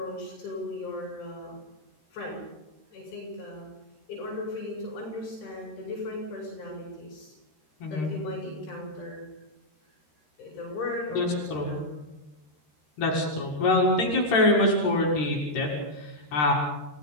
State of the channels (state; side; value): late; right; 13 ms